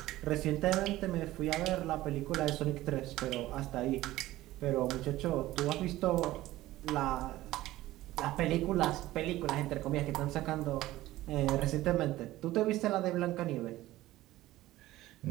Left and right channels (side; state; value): left; quieter; 16.3 dB